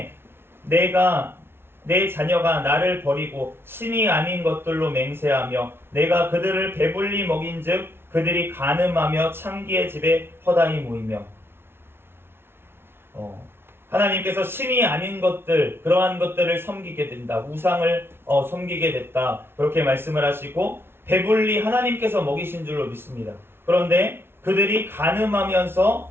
내 자녀가 나를 버리고 신이 아닌 것들로 맹세하며 내가 그들을 배불리 먹인즉 그들이 간음하며 창기의 집에 허다히 모이며 하나님께서 신이 아닌 것들, 그러한 것들을 섬기게 된다. 우상을 섬기게 됐다. 그렇게 말씀을 하시고 배불리 하나님께서 먹이신 줄로 믿습니다. 그런데 그들이 간음하면서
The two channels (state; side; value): late; left; 0.11 ms